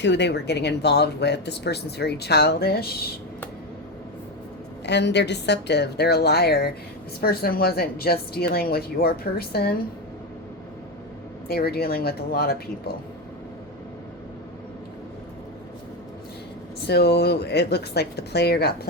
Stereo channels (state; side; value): normal; both; correlation 0.13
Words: they were getting involved with. This person's very childish. And they're deceptive. They're a liar. This person wasn't just dealing with your person. They were dealing with a lot of people. So it looks like the player got